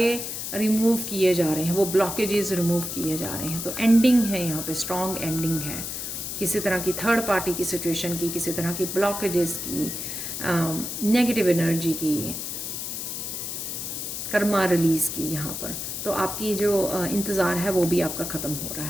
रिमूव किए जा रहे हैं, वो ब्लॉकेजेस रिमूव किए जा रहे हैं। तो एंडिंग है यहाँ पे, स्ट्रॉन्ग एंडिंग है किसी तरह की थर्ड पार्टी की सिचुएशन की, किसी तरह की ब्लॉकेजेस की, नेगेटिव एनर्जी की, कर्मा रिलीज़ की यहाँ पर। तो आपकी जो इंतज़ार है वो भी आपका ख़त्म हो रहा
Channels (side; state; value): left; noise; hiss, 5 dB below the sound